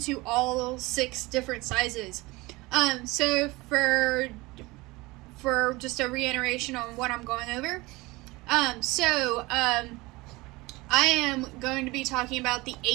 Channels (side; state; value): left; quieter; 22.2 dB